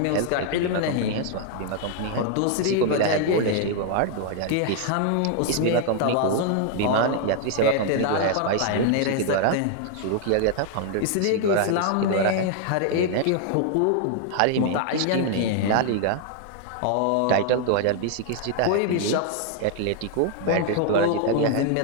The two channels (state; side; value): different; both; correlation 0.00